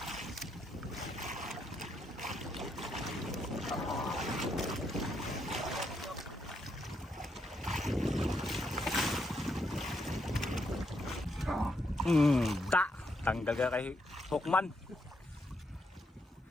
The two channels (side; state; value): both; normal; correlation 0.79